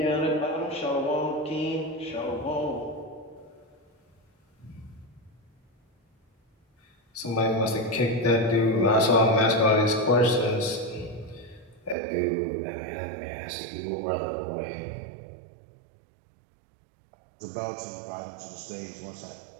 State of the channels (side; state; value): left; drops out; at 12.0 s